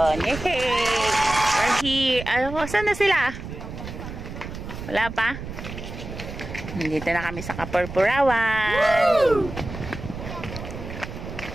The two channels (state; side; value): noise; right; rumble, 10 dB below the sound